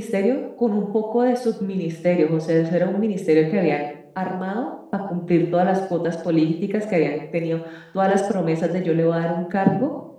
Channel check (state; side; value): identical; both; correlation 1.00